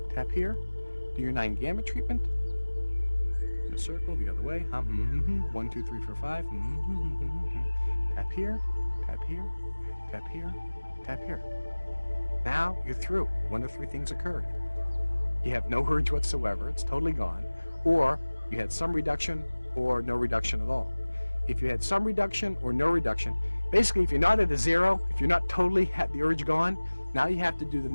tap here. Do your 9 gamut treatment. In a circle, the other way. 1, 2, 3, 4, 5. Tap here, tap here, tap here, tap here. Now you're through. One of 3 things occurred. You have no urge whatsoever. It's totally gone. Or you had some reduction or no reduction at all. If you had some reduction or no reduction, basically if you're not at a 0, if you're not totally had the urge gone, now you have to do the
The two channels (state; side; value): inverted; both; correlation -1.00